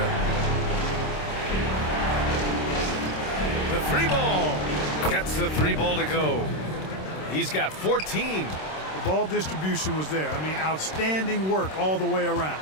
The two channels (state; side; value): late; right; 26 ms